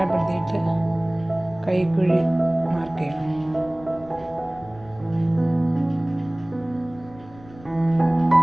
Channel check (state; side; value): noise; left; rumble, 22 dB below the sound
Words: കൈക്കുഴി മാർക്ക് ചെയ്യണം.